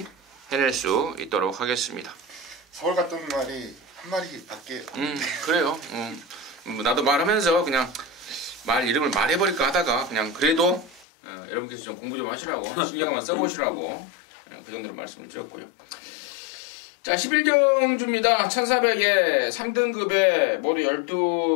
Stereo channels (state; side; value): drops out; right; at 11.1 s